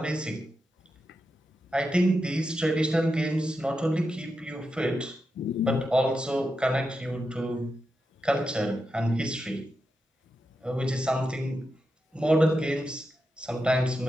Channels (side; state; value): both; normal; correlation 0.87